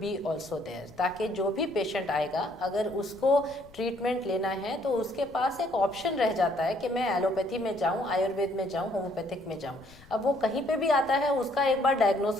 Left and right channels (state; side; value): noise; left; rumble, 23 dB below the sound